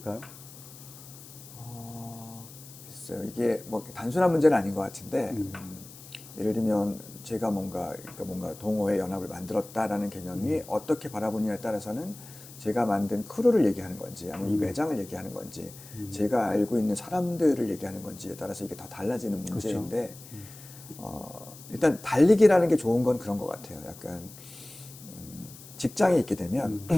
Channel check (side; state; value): left; noise; hiss, 18 dB below the sound